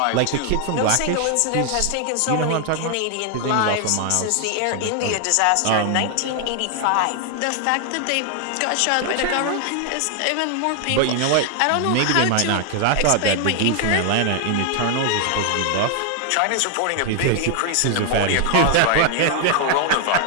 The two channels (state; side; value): different; both; correlation 0.00